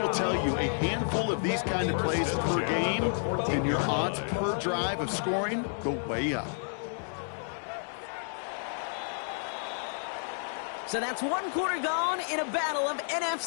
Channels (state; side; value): silent; right; 57 dB below the other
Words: will tell you a handful of these kind of plays per game, and your odds per drive of scoring go way up. So that's 1 quarter gone in a battle of